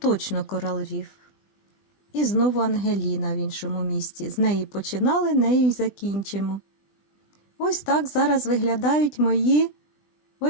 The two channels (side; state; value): right; late; 20 ms